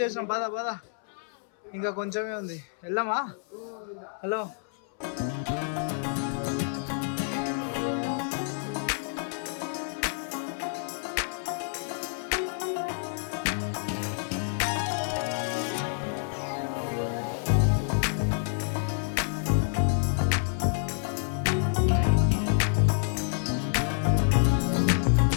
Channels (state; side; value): silent; right; 59 dB below the other